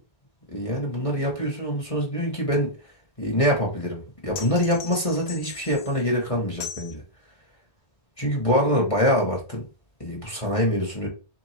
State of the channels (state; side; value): late; right; 1.6 ms